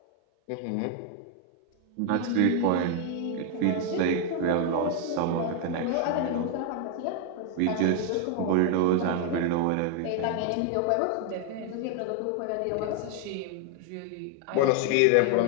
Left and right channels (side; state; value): both; different; correlation 0.00